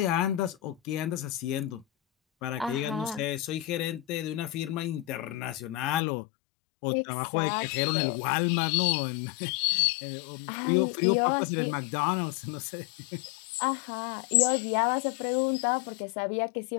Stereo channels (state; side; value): drops out; right; at 6.0 s